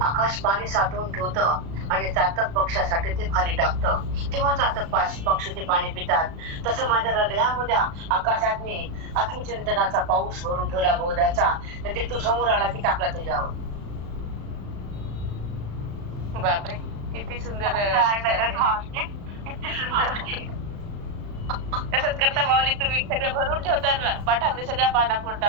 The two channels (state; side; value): late; left; 36 ms